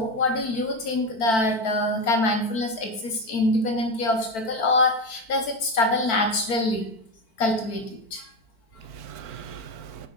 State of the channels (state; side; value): late; right; 4.5 ms